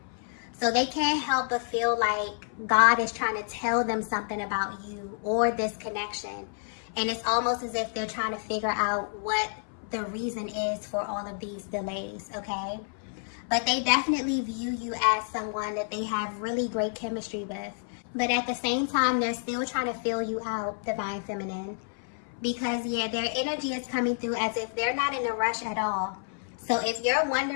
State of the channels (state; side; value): silent; right; 58 dB below the other